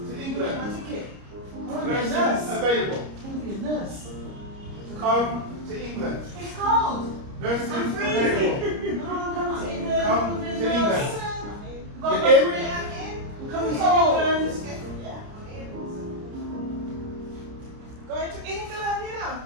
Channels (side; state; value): left; late; 30 ms